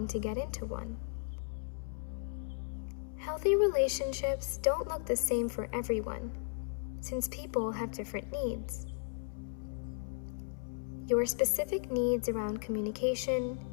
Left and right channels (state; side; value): silent; right; 54 dB below the other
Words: to get into one. Healthy relationships don't look the same for everyone, since people have different needs. Your specific needs around communication,